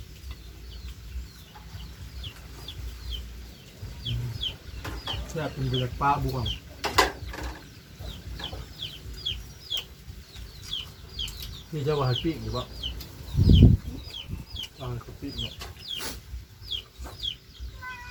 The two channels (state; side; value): identical; both; correlation 1.00